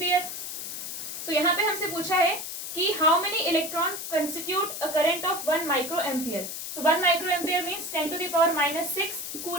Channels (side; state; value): left; noise; hiss, 6 dB below the sound